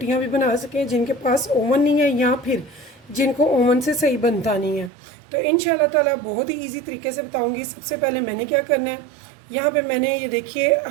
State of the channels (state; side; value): drops out; left; at 4.9 s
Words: भी बना सकें जिनके पास ओवन नहीं है या फिर जिनको ओवन से सही बनता नहीं है। तो इंशाल्लाह ताला बहुत ही ईजी तरीके से बताऊँगी। सबसे पहले मैंने क्या करना है, यहाँ पे मैंने ये देखिए